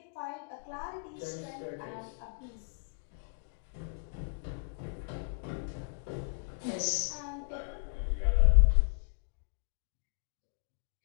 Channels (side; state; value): right; silent; digital silence